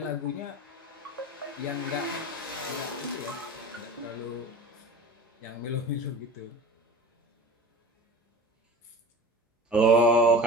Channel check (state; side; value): normal; both; correlation 0.36